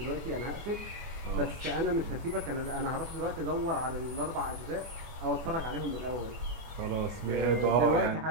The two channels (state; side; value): late; left; 24 ms